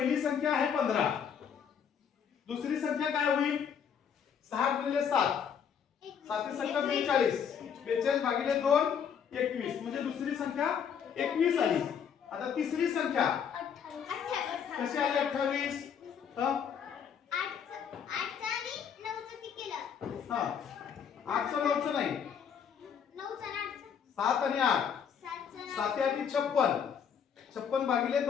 संख्या आहे 15, दुसरी संख्या काय होईल? 6 गुणिले 7, 7 संख्या 42, 42 भागिले 2 21, म्हणजे दुसरी संख्या 21 आली। आता तिसरी संख्या कशी आली? 28। हा 8चं 9चं नाही, 7 आणि 8, 7 आणि 56, 56 भागिले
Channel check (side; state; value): right; quieter; 7.6 dB